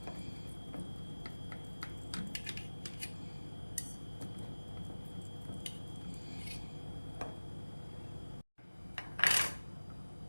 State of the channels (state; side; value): inverted; both; correlation -1.00